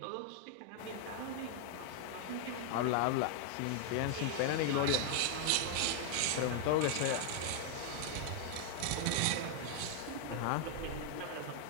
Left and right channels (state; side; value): different; both; correlation 0.00